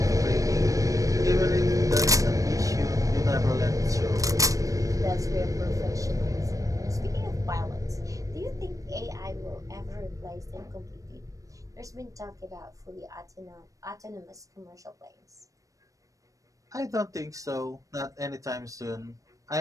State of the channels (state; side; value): late; left; 0.16 ms